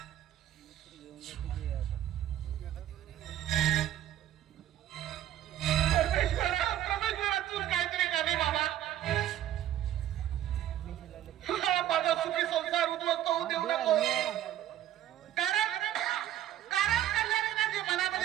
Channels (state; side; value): quieter; left; 12.3 dB